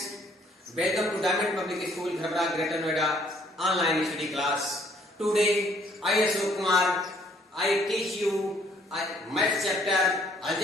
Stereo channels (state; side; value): normal; both; correlation 0.63